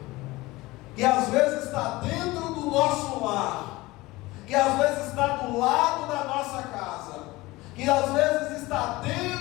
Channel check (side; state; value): right; quieter; 20.2 dB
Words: que às vezes está dentro do nosso lar, que às vezes está do lado da nossa casa, que às vezes está